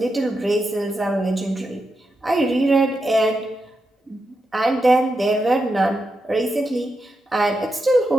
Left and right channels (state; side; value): normal; both; correlation 0.86